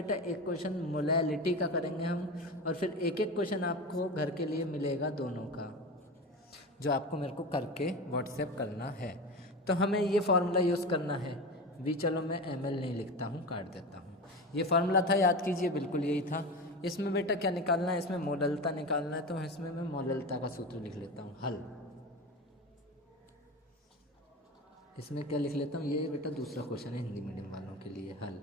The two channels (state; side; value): normal; both; correlation 0.26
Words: एक क्वेश्चन मोलैलिटी का करेंगे हम, और फिर एक एक क्वेश्चन आपको घर के लिए मिलेगा दोनों का, जो आपको मेरे को करके व्हाट्सएप करना है। तो हमें ये फार्मूला यूज़ करना है। भी चलो मैं ml नहीं लिखता हूँ, काट देता हूँ। ये फार्मूला था, याद कीजिए, बिल्कुल यही था। इसमें बेटा क्या निकालना है, इसमें मोललता निकालना है, तो इसमें मैं मोललता का सूत्र लिख लेता हूँ, हल। इसमें क्या लिख लेता हूँ, ये बेटा दूसरा क्वेश्चन है हिंदी मीडियम वालों के लिए, हल,